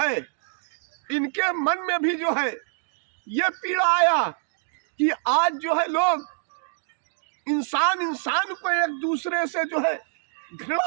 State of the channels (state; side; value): silent; left; digital silence